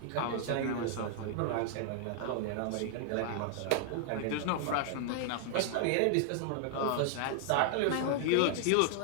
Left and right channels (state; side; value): different; both; correlation 0.00